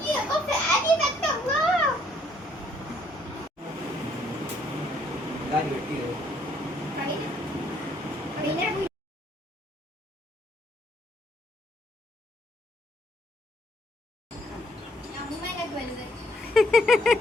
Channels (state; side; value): normal; both; correlation 0.67